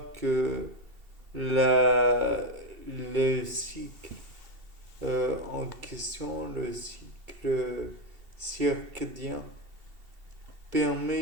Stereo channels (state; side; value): late; left; 2.7 ms